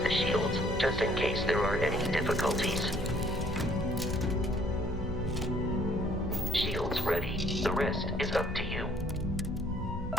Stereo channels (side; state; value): both; normal; correlation 0.61